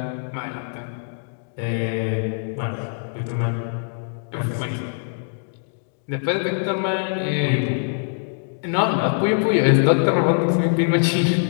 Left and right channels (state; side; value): silent; right; digital silence